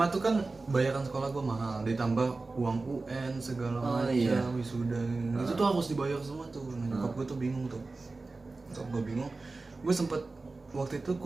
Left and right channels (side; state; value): left; quieter; 3.6 dB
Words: tuh kan bayaran sekolah gua mahal, ditambah uang UN segala macam, wisuda. Itu tuh harus dibayar semua tuh. Nah, nyokap gua tuh bingung tuh. Nyokap gua bingung. Waktu itu